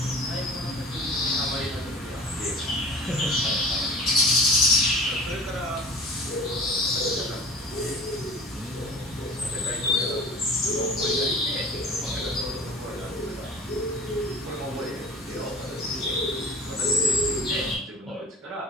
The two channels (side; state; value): both; normal; correlation 0.43